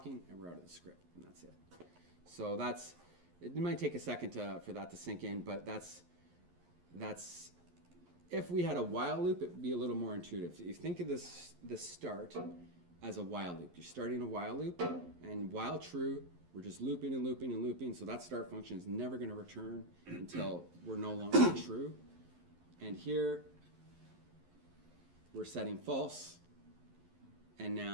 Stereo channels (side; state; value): left; late; 11 ms